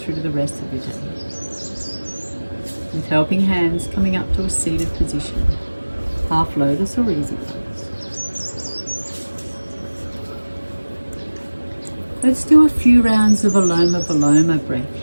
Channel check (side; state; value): both; inverted; correlation -1.00